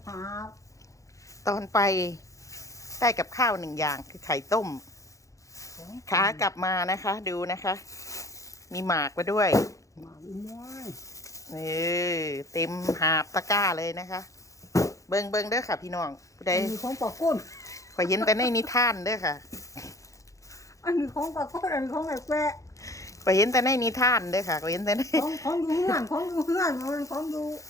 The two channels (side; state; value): right; late; 0.16 ms